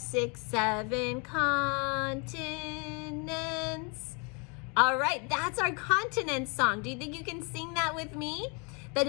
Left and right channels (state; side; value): quieter; right; 34.0 dB